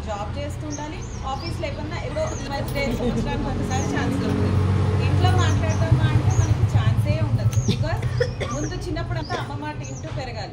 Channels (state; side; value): identical; both; correlation 1.00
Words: జాబ్ చేస్తుండాలి, ఆఫీస్లో ఏమన్నా ఏదో ఉమెన్స్ డే సంవత్సరానికి ఒకసారి ఛాన్స్ దొరుకుతుంది. ఇంట్లో మాట్లాడదామా అంటే మనకి ఛాన్సే ఉండదు. బికాస్ ముందు చిన్నప్పుడు అంతా అమ్మ మాట ఇంటూ